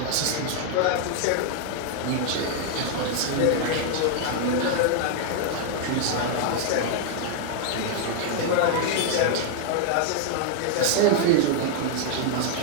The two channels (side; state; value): both; different; correlation 0.00